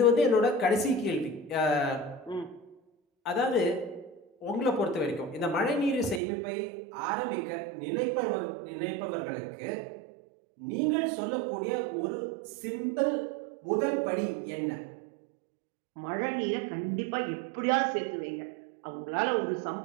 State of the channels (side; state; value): left; drops out; at 6.2 s